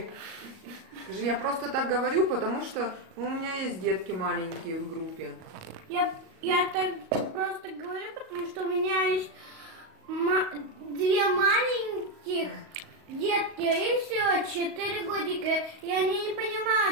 Скажи, я просто так говорю, потому что у меня есть детки маленькие в группе. Я так просто говорю, потому что у меня есть две маленьких детки, и все, 4 годика, и они не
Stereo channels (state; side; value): late; left; 38 ms